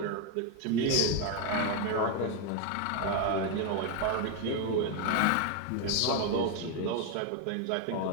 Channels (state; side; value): different; both; correlation 0.01